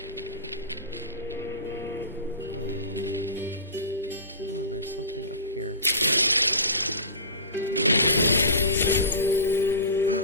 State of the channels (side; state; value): both; inverted; correlation -0.31